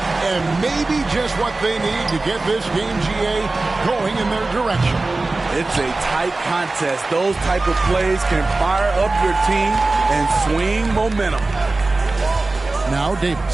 And maybe just what they need to get this game, GA, going in their direction. It's a tight contest. Those type of plays can fire up your team and swing momentum. Now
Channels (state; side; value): quieter; left; 3.3 dB